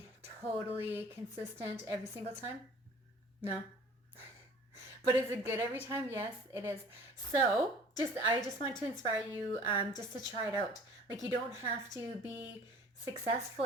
totally consistent every single time? No. But is it good every time? Yes, it is. So I just want to inspire you just to try it out. Like, you don't have to be successful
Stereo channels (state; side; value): normal; both; correlation 0.48